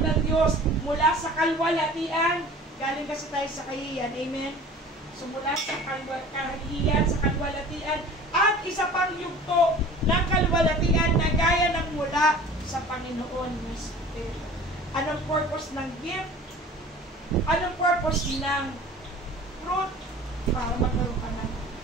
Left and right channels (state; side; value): normal; both; correlation 0.44